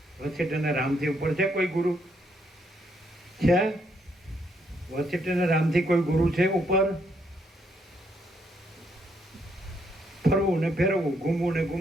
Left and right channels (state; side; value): normal; both; correlation 0.74